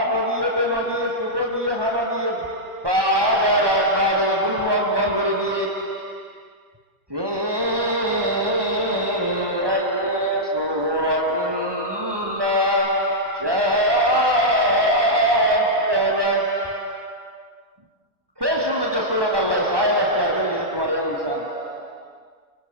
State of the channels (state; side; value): late; left; 1.2 ms